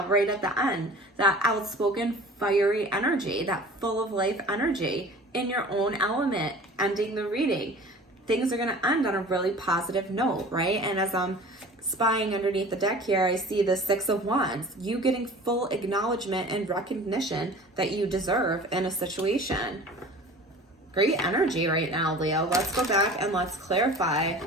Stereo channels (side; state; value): both; normal; correlation 0.42